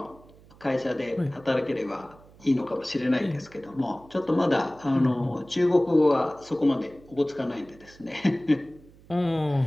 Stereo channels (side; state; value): right; noise; hum, 25 dB below the sound